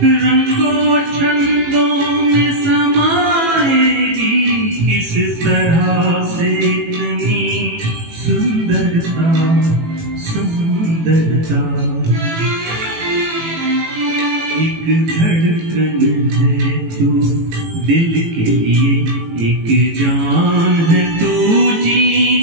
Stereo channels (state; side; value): late; left; 18 ms